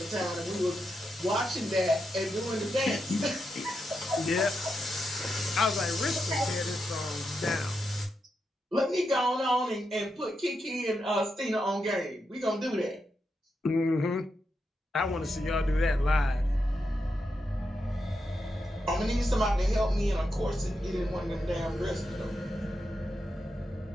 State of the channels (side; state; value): both; normal; correlation 0.85